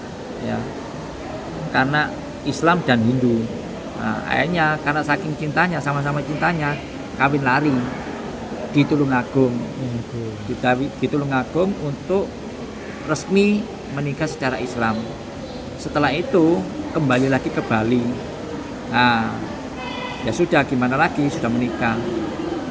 ya, karena Islam dan Hindu. Nah, akhirnya karena saking cintanya, sama-sama cintanya, kawin lari di Tulungagung. Di Tulungagung untuk resmi menikah secara Islam. Setelah itu kembali lagi ke Bali. Nah, ya sudah, gimana lagi, sudah menikah.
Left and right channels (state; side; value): identical; both; correlation 1.00